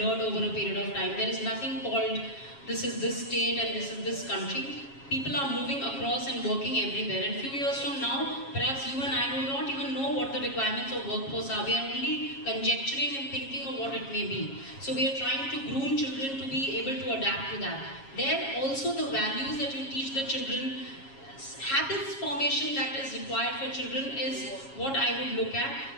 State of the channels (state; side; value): late; right; 7.3 ms